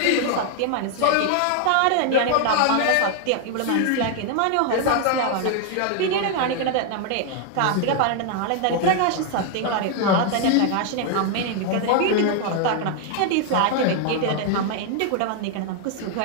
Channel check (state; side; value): different; both; correlation 0.00